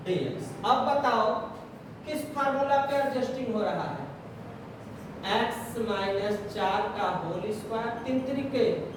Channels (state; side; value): identical; both; correlation 1.00